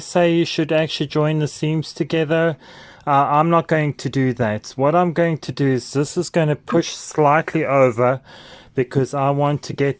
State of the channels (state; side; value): identical; both; correlation 1.00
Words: you should actually join the seams together. I'm not going to do that. What I'm going to do is this is going to push slightly over because I want to